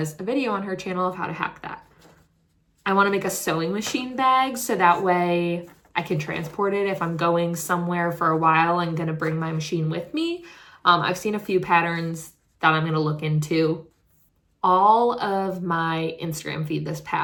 a video on her channel of how to hack that. I want to make a sewing machine bag so that way I can transport it if I'm going somewhere for a while and gonna bring my machine with me. I've seen a few patterns that I'm gonna look into. All of my Instagram feed this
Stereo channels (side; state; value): both; identical; correlation 1.00